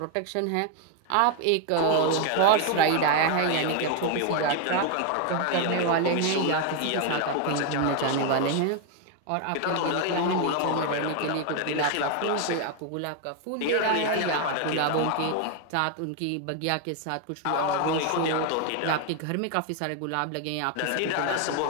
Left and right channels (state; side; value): different; both; correlation 0.01